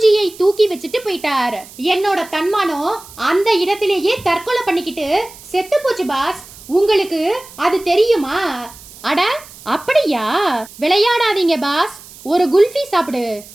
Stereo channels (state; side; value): noise; right; hiss, 19 dB below the sound